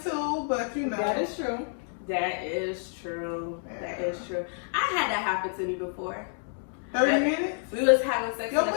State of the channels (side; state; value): right; silent; 59 dB below the other